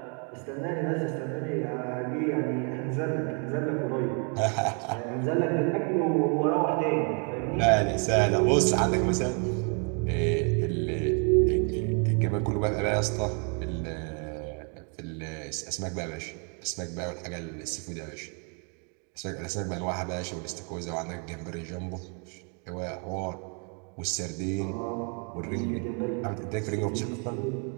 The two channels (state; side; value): quieter; left; 38.8 dB